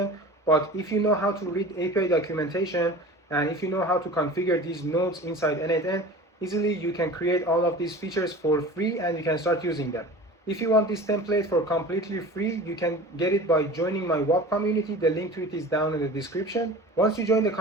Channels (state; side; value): normal; both; correlation 0.38